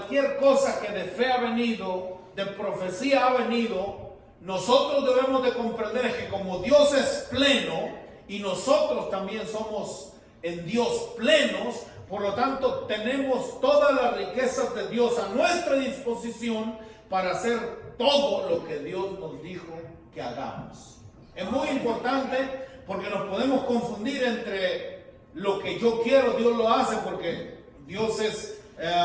cosa que de fe ha venido, de profecía ha venido, nosotros debemos de comprender que como Dios es pleno y nosotros también somos en Dios plenos, por lo tanto tenemos todas las riquezas de Dios a nuestra disposición para hacer todo lo que Dios nos dijo que hagamos. Es muy importante porque nos podemos confundir entre lo que yo quiero, Dios lo hace, porque Dios es,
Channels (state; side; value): identical; both; correlation 1.00